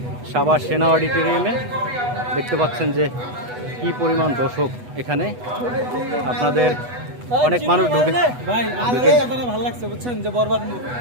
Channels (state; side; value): late; left; 8.1 ms